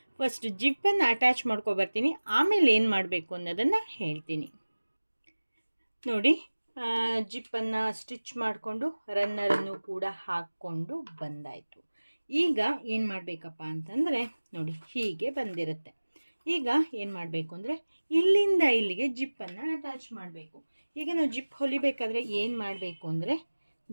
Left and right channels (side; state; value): both; inverted; correlation -1.00